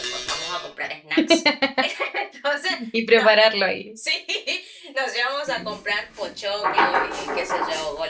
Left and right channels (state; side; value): identical; both; correlation 1.00